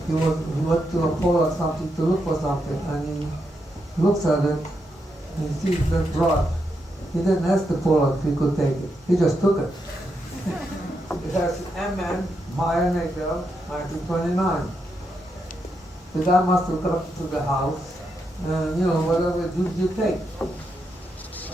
He went to a pole or something to look for something, and he looks at it, and he sees that brush. He didn't ask the Pollock if he could take it. He just took it. It has MN, Meyer Nagel, 1929. The guy must have got to the house, and whatever you take.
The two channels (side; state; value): both; normal; correlation 0.82